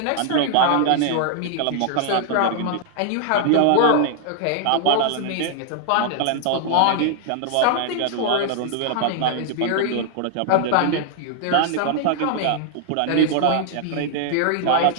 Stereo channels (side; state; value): both; different; correlation -0.01